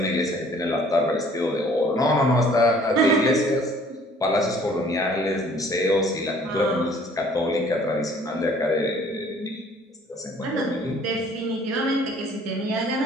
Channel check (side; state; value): both; normal; correlation 0.56